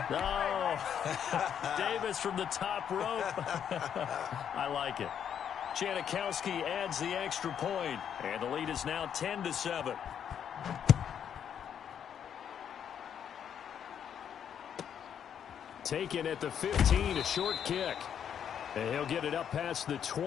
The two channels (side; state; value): right; quieter; 8.6 dB